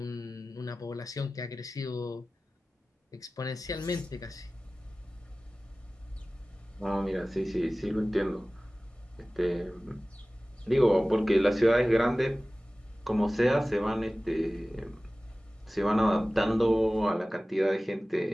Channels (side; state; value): both; normal; correlation 0.97